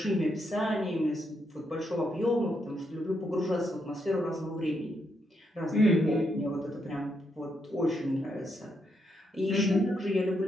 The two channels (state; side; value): normal; both; correlation 0.79